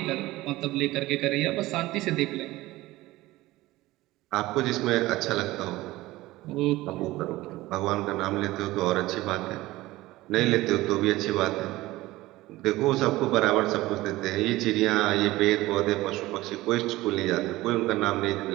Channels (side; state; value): left; quieter; 18.2 dB